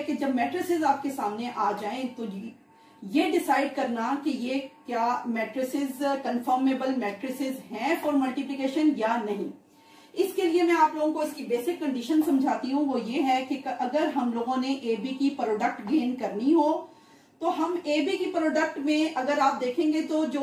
कि जब मैट्रिसेस आपके सामने आ जाएं तो ये डिसाइड करना कि ये क्या मैट्रिसेस कंफर्मेबल मैट्रिसेस हैं फॉर मल्टीप्लिकेशन या नहीं। इसके लिए मैं आप लोगों को इसकी बेसिक कंडीशन समझाती हूँ। वो ये है कि अगर हम लोगों ने ए बी की प्रोडक्ट गेन करनी हो तो हम ए बी की प्रोडक्ट में अगर आप देखेंगे तो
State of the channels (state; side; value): identical; both; correlation 1.00